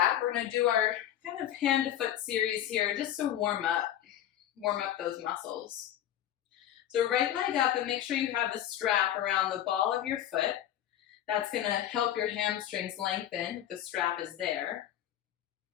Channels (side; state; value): right; quieter; 11.5 dB